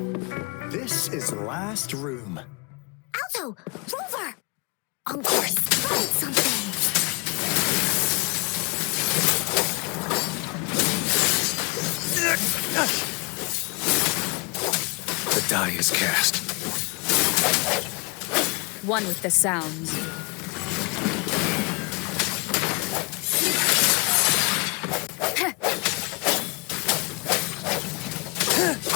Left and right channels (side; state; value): right; quieter; 30.4 dB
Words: this is the last room. Alto! Rover! Encore spotted something! The die is cast. One with the sounds.